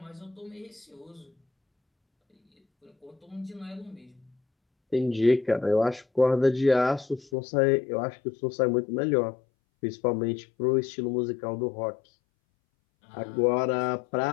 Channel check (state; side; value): drops out; right; at 7.3 s